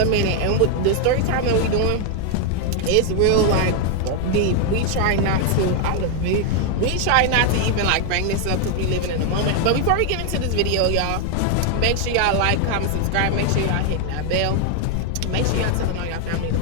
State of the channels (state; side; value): different; both; correlation 0.00